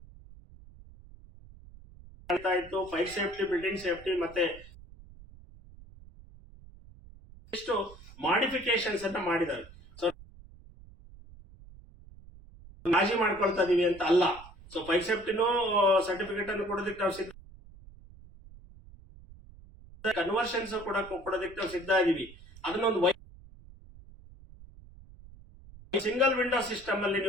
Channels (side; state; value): right; noise; rumble, 20 dB below the sound